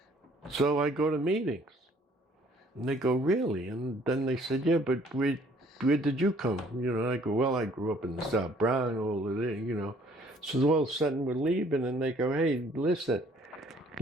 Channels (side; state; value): both; normal; correlation 0.59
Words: so I go to meetings. And they go, really? And then they said, yeah, but where did you come? I go, well, I grew up in the South Bronx, all of it, So all of a sudden we're leaving, and they go, hey, listen,